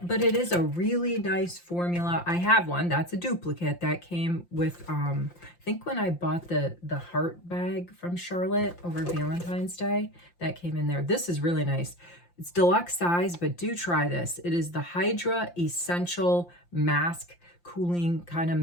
but it is a really nice formula. I have one. That's a duplicate that came with, I think when I bought the heart bag from Charlotte over Valentine's Day, that came in there. This is really nice. It's deluxe size, but do try this. It is the Hydra Essential Mask, cooling kind of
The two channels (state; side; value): late; right; 5.7 ms